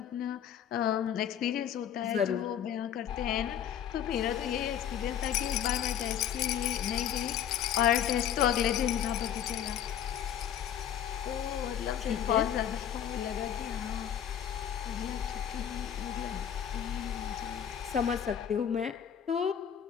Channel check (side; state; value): right; quieter; 9.5 dB